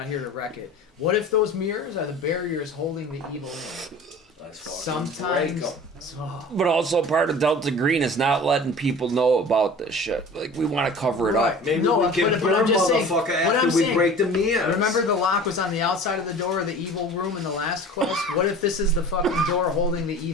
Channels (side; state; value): both; normal; correlation 0.41